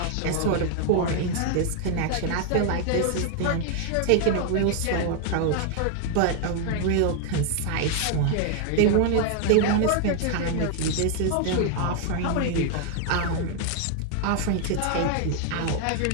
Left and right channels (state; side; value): different; both; correlation 0.00